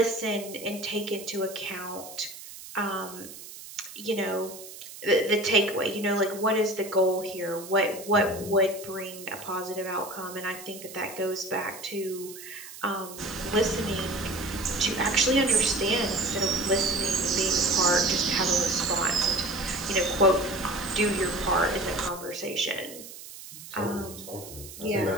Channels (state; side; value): noise; right; hiss, 14 dB below the sound